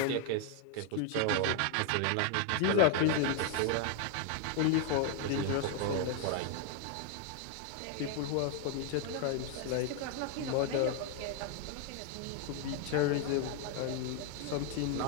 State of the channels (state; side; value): different; both; correlation 0.00